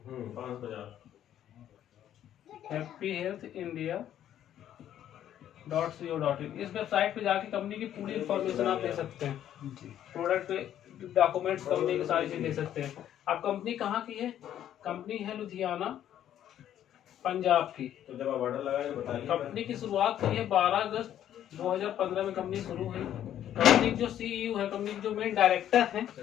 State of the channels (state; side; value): quieter; right; 11.0 dB